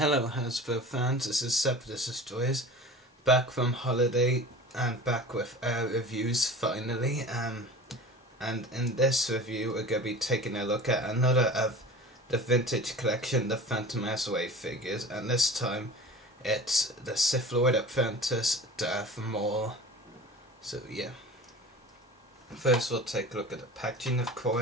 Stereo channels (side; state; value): both; normal; correlation 0.38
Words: Hasbro fans, this is Separate Destroyers, back from holiday and back with our reviews finally. And in this review we're going to be taking a look at another of the vintage collection, the Phantom Menace Wave figures, and this time it's the Sith Lord Apprentice Darth Maul. So yeah, first we'll take a look at the packaging, of